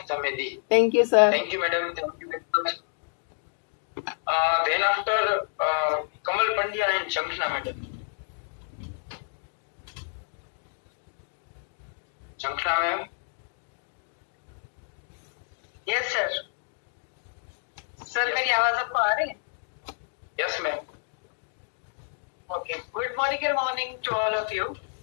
हमें दी। Thank you sir. Thank you madam, thank you very much. Then after Kamal Pandya and Shankhana madam. Shankhana ma'am. Yes sir. Sir मेरी आवाज आपको आ रही है? Yes ma'am. Okay, good morning to all of you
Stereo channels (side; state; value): right; silent; digital silence